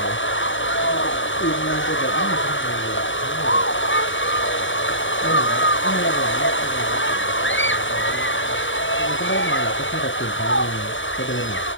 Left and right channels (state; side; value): late; right; 0.56 ms